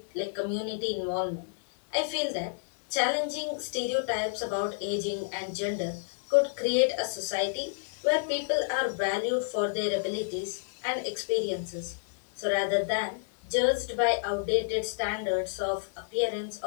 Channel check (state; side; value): silent; right; digital silence